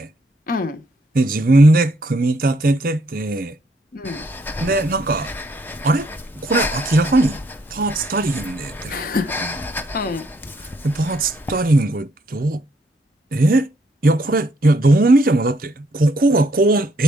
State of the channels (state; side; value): normal; both; correlation 0.71